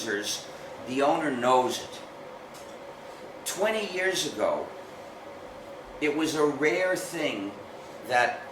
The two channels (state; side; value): identical; both; correlation 1.00